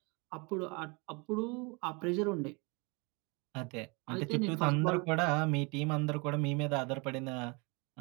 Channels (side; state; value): left; quieter; 29.8 dB